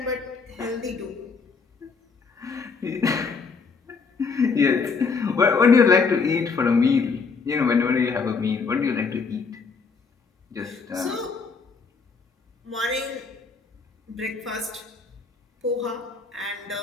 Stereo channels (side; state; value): right; quieter; 4.9 dB